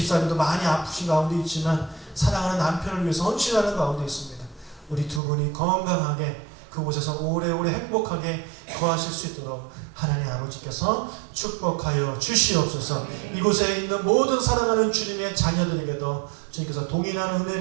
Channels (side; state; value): left; drops out; at 5.2 s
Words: 많이 아프신 가운데 있지만 사랑하는 남편을 위해서 헌신하는 가운데 있습니다. 우리 두 분이 건강하게 그곳에서 오래오래 행복하게 거하실 수 있도록 하나님 아버지께서 축복하여 주시옵소서. 이곳에 있는 모든 사랑하는 주님의 자녀들에게도 주님께서 동일한